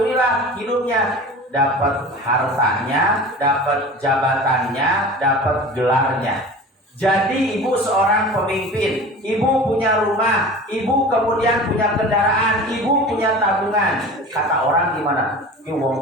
hidupnya dapat hartanya, dapat jabatannya, dapat gelarnya. Jadi ibu seorang pemimpin, ibu punya rumah, ibu kemudian punya kendaraan, ibu punya tabungan. Kata orang gimana? Ini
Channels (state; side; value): normal; both; correlation 0.37